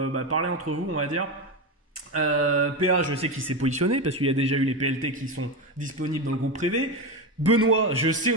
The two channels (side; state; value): both; normal; correlation 0.16